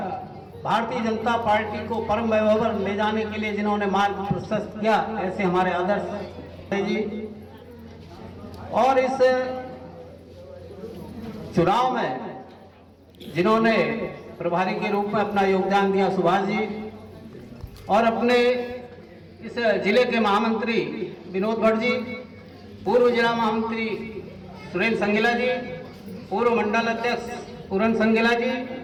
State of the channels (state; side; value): identical; both; correlation 1.00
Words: भारतीय जनता पार्टी को परम वैभव पर ले जाने के लिए जिन्होंने मार्ग प्रशस्त किया, ऐसे हमारे आदर्श जी। और इस चुनाव में जिन्होंने प्रभारी के रूप में अपना योगदान दिया, सुभाष जी, और अपने इस जिले के महामंत्री विनोद भट्ट जी, पूर्व जिला महामंत्री सुरेंद्र संगेला जी, पूर्व मंडल अध्यक्ष पूरन संगेला जी,